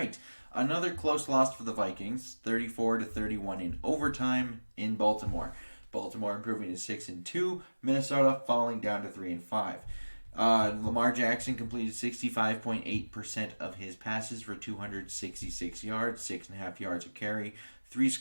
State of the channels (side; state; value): both; inverted; correlation -1.00